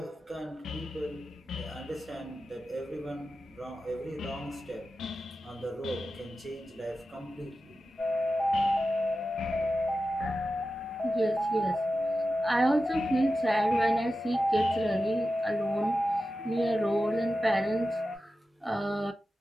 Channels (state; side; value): normal; both; correlation 0.93